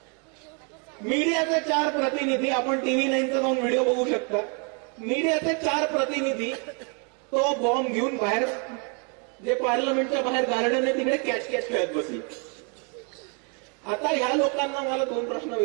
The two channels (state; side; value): quieter; left; 37.1 dB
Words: मीडियाचे 4 प्रतिनिधी, आपण TV 9चा जाऊन व्हिडिओ बघू शकता, मीडियाचे 4 प्रतिनिधी तो बॉम्ब घेऊन बाहेर, जे पार्लमेंटच्या बाहेर गार्डन आहे तिकडे कॅच खेळत बसली. आता ह्या लोकांना मला 2 प्रश्न